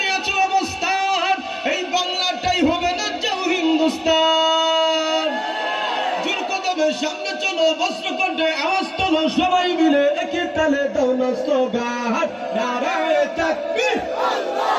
নিয়েছে অবস্থান এই বাংলাটাই হবে না যাও হিন্দুস্তান জোর কদমে সামনে চলো বস্ত্র কণ্ঠে আওয়াজ তোলো সবাই মিলে একই তালে দাও না স্লোগান নারায়ে তাকবীর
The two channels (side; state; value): both; identical; correlation 1.00